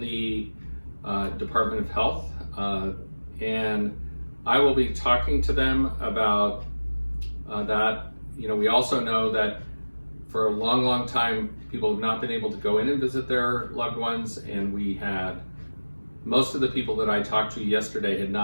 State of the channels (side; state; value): both; inverted; correlation -1.00